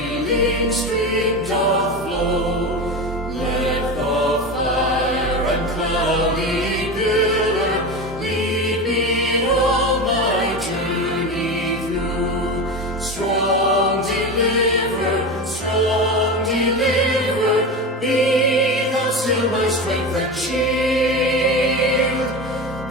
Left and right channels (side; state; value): both; normal; correlation 0.23